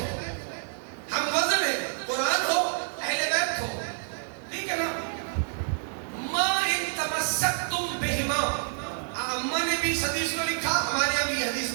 ہم وزن ہے, قرآن ہو, اہل بیت ہو. ٹھیک ہے نا. ما ان تمسکتم بہما, اماں نے بھی اس حدیث کو لکھا, ہمارے یہاں بھی یہ حدیث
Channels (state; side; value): silent; left; 59 dB below the other